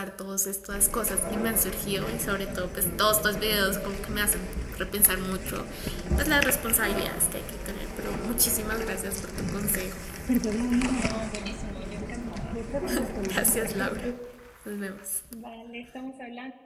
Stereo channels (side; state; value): both; identical; correlation 1.00